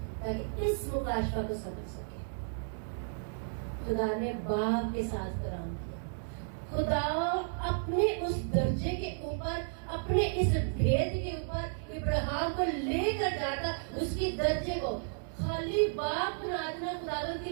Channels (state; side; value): silent; left; digital silence